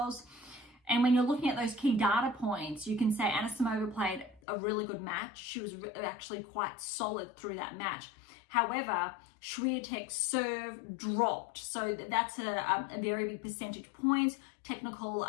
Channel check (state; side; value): drops out; right; at 4.4 s